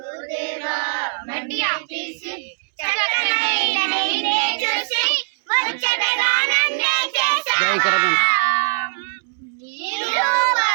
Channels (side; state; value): left; silent; digital silence